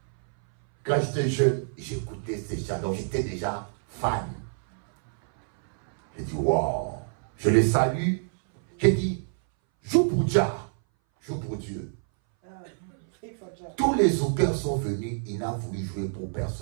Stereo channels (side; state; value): left; silent; 60 dB below the other